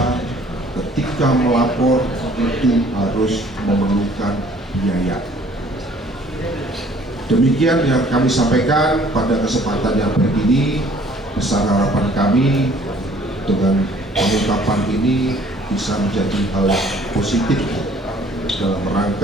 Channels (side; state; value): both; normal; correlation 0.56